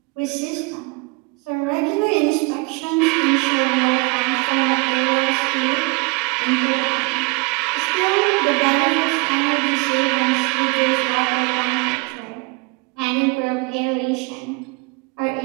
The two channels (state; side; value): quieter; left; 29.1 dB